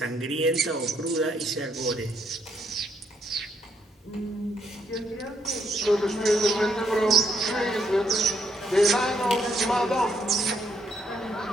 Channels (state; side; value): normal; both; correlation 0.72